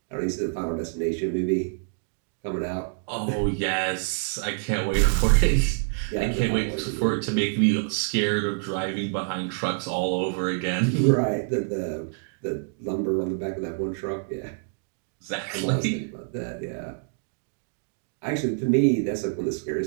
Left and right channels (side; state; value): left; silent; digital silence